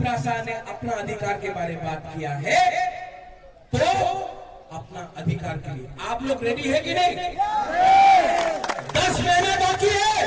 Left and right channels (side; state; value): both; identical; correlation 1.00